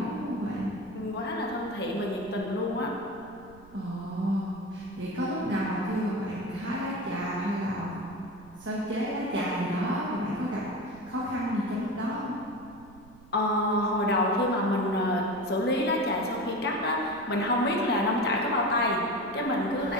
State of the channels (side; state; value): right; noise; rumble, 23 dB below the sound